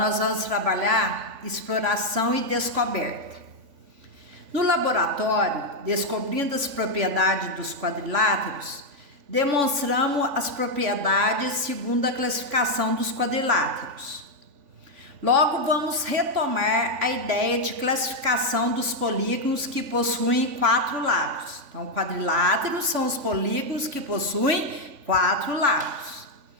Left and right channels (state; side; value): late; left; 3.5 ms